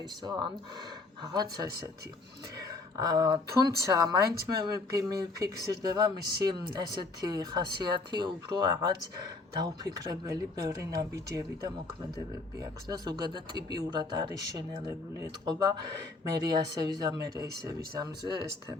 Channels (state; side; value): quieter; right; 3.6 dB